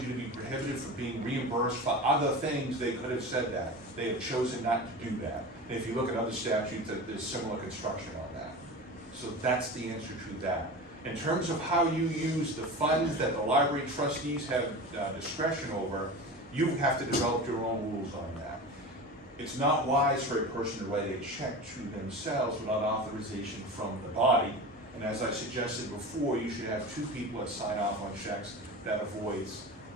you to be prohibited from being reimbursed for other things, they could have said that. They have chosen not to do that. And if you look at other statutes, there's similar construction on that. So that's the answer to that. In terms of how you use the funds that the library trustees have discretion over, you have to develop your own rules on that. It's not wise for a person to write a check to themselves without authorization from the body. And as I suggested before, you should have two people that sign off on checks. That avoids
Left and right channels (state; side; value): normal; both; correlation 0.30